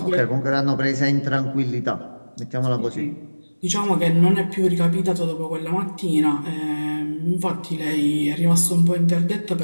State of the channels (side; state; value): both; inverted; correlation -1.00